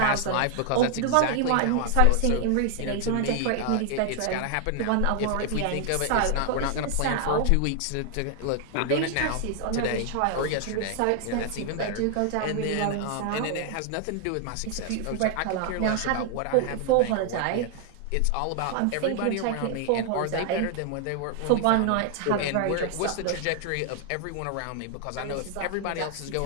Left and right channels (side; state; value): both; different; correlation 0.00